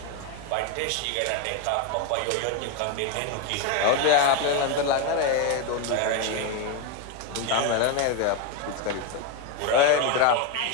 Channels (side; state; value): both; different; correlation 0.02